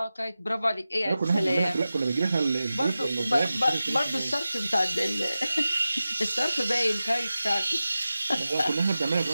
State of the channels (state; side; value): inverted; both; correlation -0.94